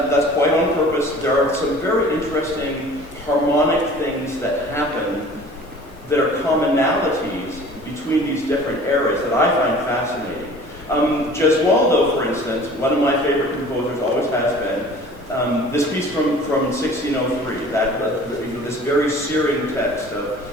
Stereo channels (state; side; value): normal; both; correlation 0.46